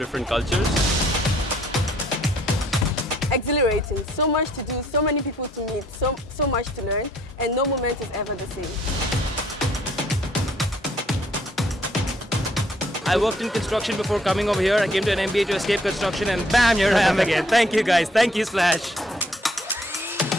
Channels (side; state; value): both; normal; correlation 0.64